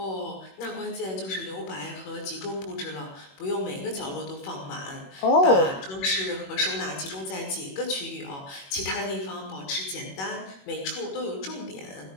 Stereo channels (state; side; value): late; right; 21 ms